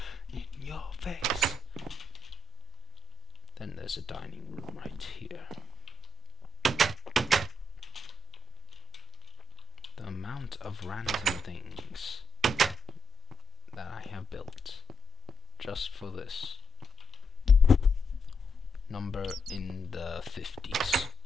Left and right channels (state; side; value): normal; both; correlation 0.80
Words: in your face. Then there's a dining room right here. The amount of random things that I have built just for this. Number in the 50s.